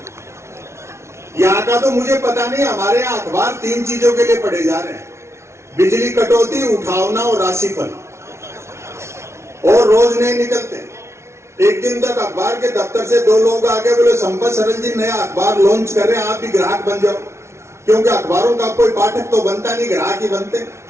यहाँ का तो मुझे पता नहीं, हमारे यहाँ अखबार 3 चीजों के लिए पढ़े जा रहे हैं, बिजली कटौती, उठावना और राशिफल, और रोज नहीं निकलते। एक दिन तक अखबार के दफ्तर से 2 लोग आके बोले संपत सरल जी नया अखबार लॉन्च कर रहे हैं, आप भी ग्राहक बन जाओ, क्योंकि अखबारों का कोई पाठक तो बनता नहीं, ग्राहक ही बनते।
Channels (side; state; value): left; late; 0.13 ms